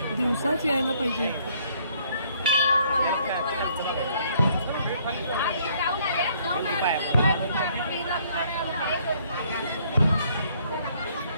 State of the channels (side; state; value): both; inverted; correlation -0.64